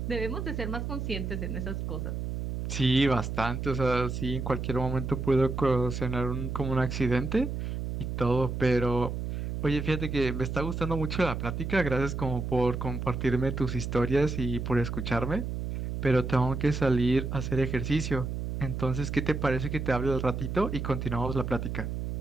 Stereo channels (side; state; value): right; noise; hum, 4 dB below the sound